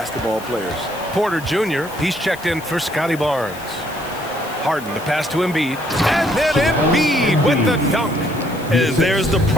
players. Porter Jr., he's checked in for Scotty Barnes. Harden to pass to Embiid. And then Embiid with the dunk. And there's the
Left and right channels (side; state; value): left; noise; hiss, 18 dB below the sound